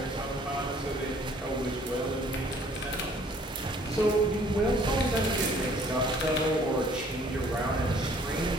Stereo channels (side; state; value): both; normal; correlation 0.58